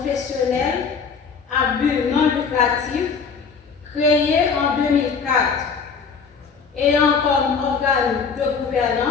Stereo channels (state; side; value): quieter; right; 5.7 dB